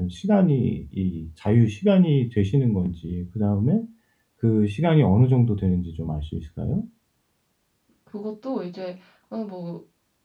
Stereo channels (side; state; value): both; identical; correlation 1.00